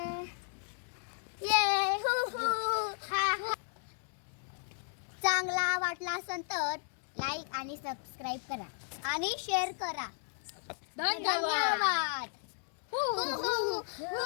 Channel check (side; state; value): right; silent; digital silence